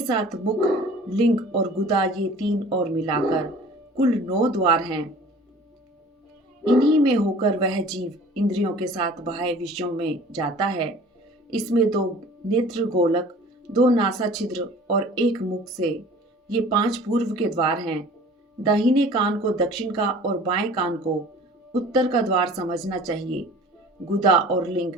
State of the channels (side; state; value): both; normal; correlation 0.46